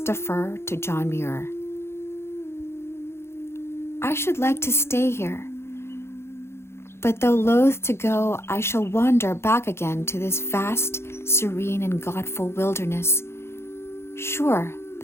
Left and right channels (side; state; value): right; late; 0.12 ms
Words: defer to John Muir. I should like to stay here, but though loath to go, I shall wander back again to this vast, serene, and godful wilderness, sure